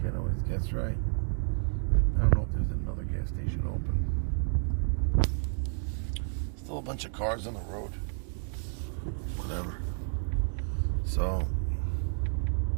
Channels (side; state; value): left; silent; digital silence